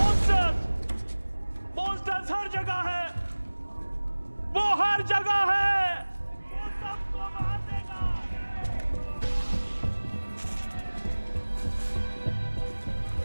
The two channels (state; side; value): inverted; both; correlation -1.00